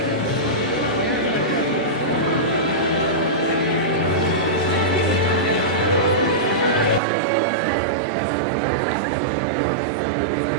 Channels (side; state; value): left; drops out; at 7.0 s